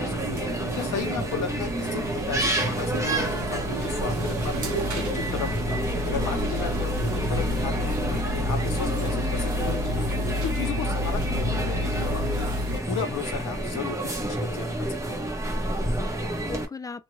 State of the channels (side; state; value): both; normal; correlation 0.49